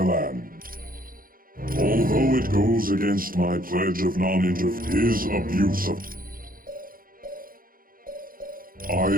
Although it goes against my pledge of non-interference, his abuse of... I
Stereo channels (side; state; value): left; late; 0.41 ms